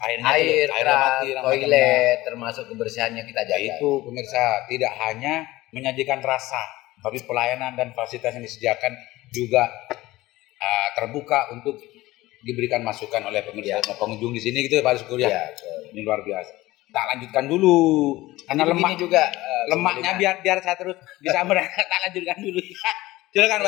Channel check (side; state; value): right; quieter; 18.2 dB